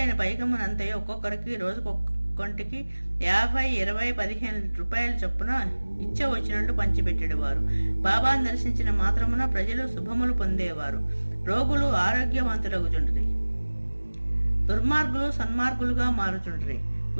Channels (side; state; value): both; inverted; correlation -1.00